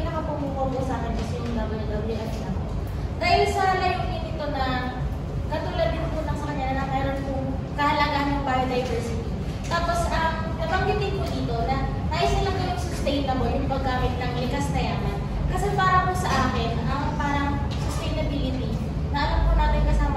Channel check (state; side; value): identical; both; correlation 1.00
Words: paggamit ng likas na yaman. Kasi para po sa akin, ang parang sustainability, na alam po natin